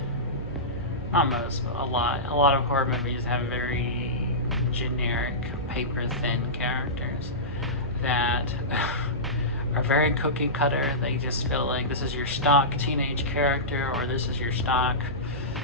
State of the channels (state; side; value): normal; both; correlation -0.18